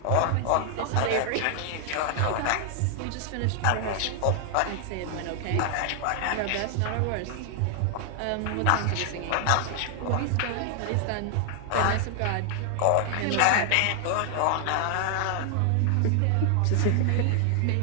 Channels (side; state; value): both; different; correlation 0.00